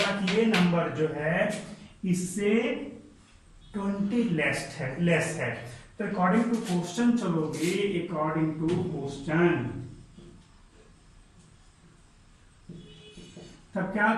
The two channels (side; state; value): both; identical; correlation 1.00